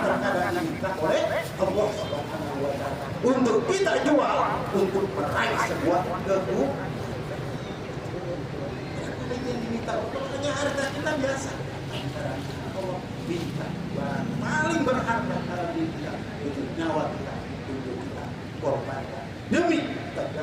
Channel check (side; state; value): both; identical; correlation 1.00